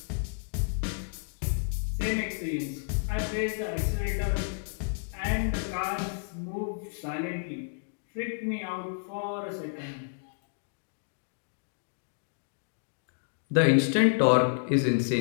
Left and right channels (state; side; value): silent; right; digital silence